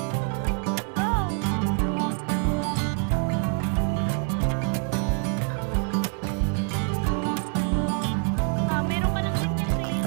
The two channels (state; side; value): quieter; left; 39.8 dB